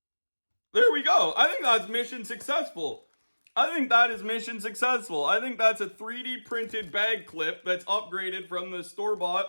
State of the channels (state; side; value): inverted; both; correlation -1.00